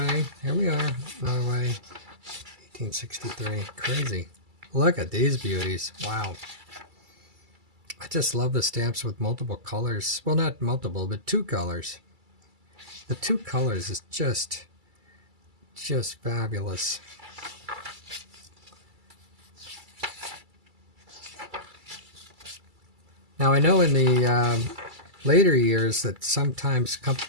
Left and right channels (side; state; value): left; late; 2.3 ms